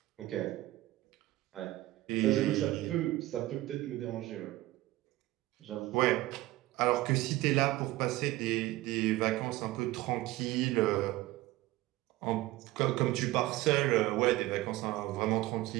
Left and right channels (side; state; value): left; quieter; 17.5 dB